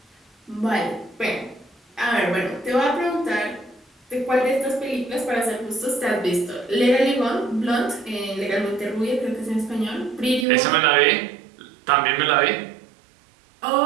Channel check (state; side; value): drops out; left; at 10.5 s